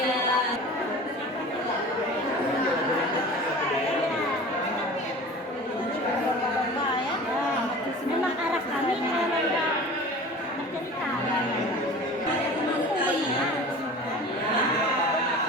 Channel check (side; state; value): both; normal; correlation 0.39